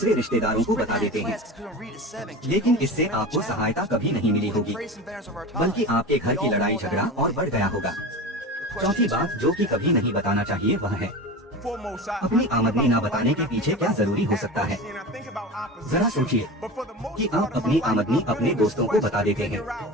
रिश्तेदारों को बता देते हैं, लेकिन इससे आपको सहायता कभी नहीं मिली होगी बल्कि आपके घर की लड़ाई झगड़ा और बढ़ गया होगा। चौथी बात जो कि कभी नहीं बताना चाहिए वह है अपनी आमदनी न बताने के पीछे क्या जरूरी हो सकता है। जरा सोचिए कि आप अपनी आमदनी अपने दोस्तों को बता देते हैं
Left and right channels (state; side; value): normal; both; correlation 0.30